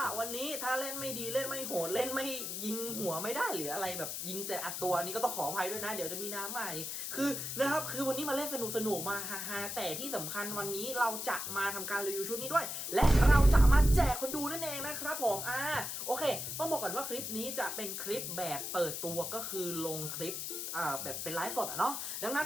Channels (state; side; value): noise; left; hiss, 4 dB below the sound